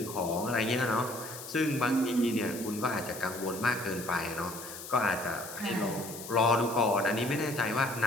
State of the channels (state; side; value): noise; left; hiss, 12 dB below the sound